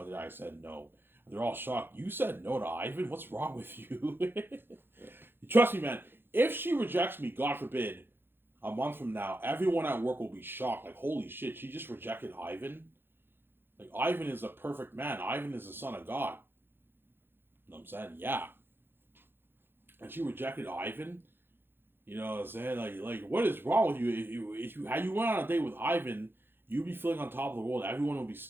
the day I said no. And they're all shocked. You said no to Ivan? What's wrong with you? Trust me, man. If she rejects me, God forbid, a month from now, everyone at work will be shocked. Like, holy shit, she just rejected Ivan? Like, Ivan is a perfect man. Ivan is the son of God. You know what I'm saying? Yeah. And she rejected Ivan? You know what I'm saying? Like what is wrong with you? If you had you went on a date with Ivan, you'd be feeling on top of the world. Everyone would be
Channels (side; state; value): left; late; 0.10 ms